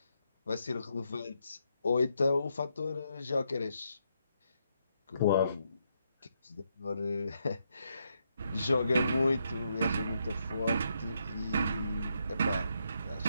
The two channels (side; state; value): both; inverted; correlation -0.79